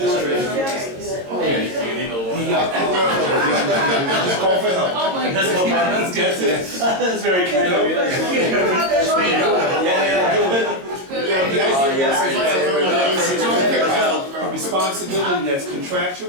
call for help. Oh my That's God. That's it. That's very kind of you. Responsibility that's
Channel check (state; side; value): late; left; 22 ms